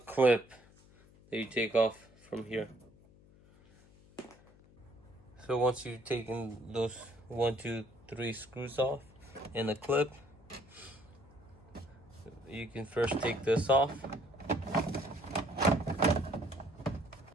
that you take off from here. So once you've taken those 1, 2, 3 screws off and the clip, you can first take this off.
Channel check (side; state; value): left; noise; hum, 25 dB below the sound